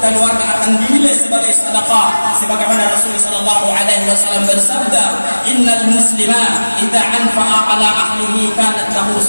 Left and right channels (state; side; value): inverted; both; correlation -1.00